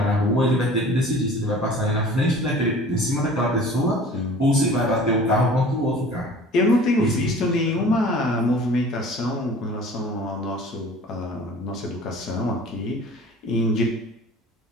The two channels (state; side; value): normal; both; correlation 0.46